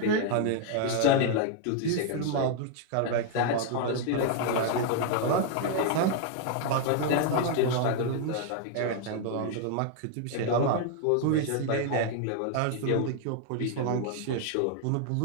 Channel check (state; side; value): different; both; correlation 0.00